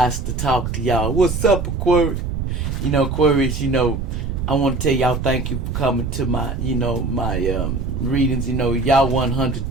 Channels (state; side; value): noise; right; rumble, 3 dB below the sound